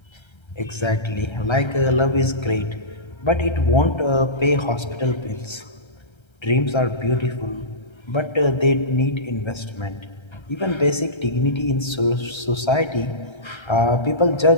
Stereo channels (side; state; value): right; late; 1.3 ms